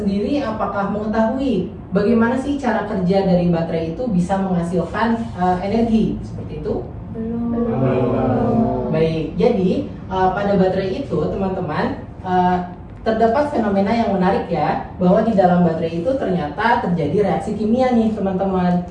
apakah mengetahui bagaimana sih cara kerja dari baterai itu bisa menghasilkan energi? Seperti itu? Belum. Baik, jadi pada baterai itu teman-teman terdapat fenomena yang menarik ya, bahwa di dalam baterai itu ternyata terjadi reaksi kimia nih teman-teman.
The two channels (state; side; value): identical; both; correlation 1.00